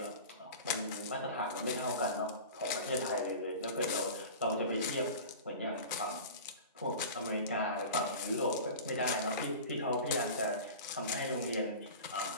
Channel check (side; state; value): both; inverted; correlation -0.34